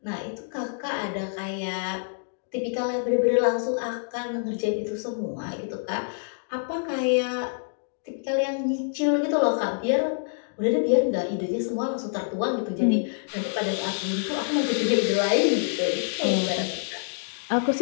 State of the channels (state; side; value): silent; right; digital silence